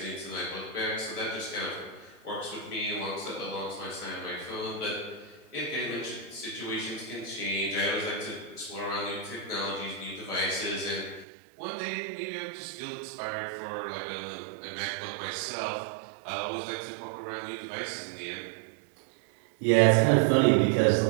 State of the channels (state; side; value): drops out; left; at 11.2 s